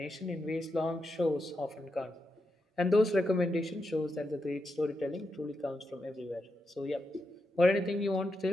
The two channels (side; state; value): both; normal; correlation 0.86